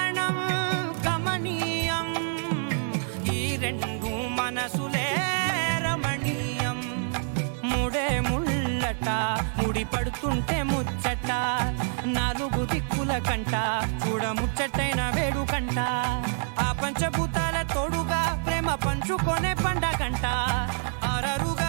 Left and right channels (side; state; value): left; silent; 60 dB below the other